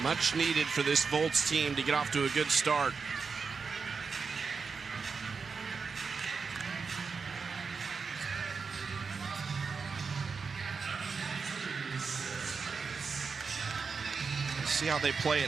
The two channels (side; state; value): left; quieter; 5.2 dB